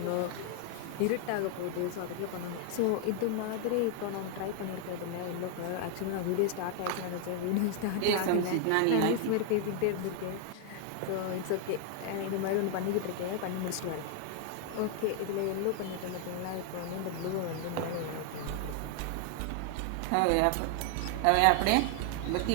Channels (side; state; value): both; different; correlation 0.00